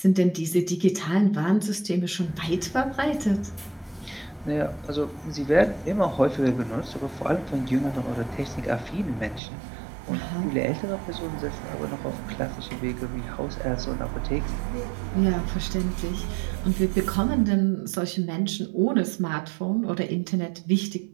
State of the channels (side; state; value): left; drops out; at 9.4 s